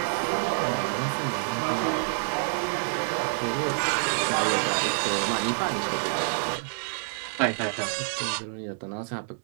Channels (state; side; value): silent; left; 60 dB below the other